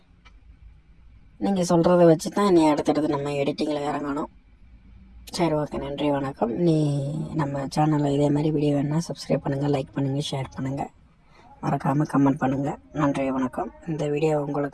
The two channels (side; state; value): both; identical; correlation 1.00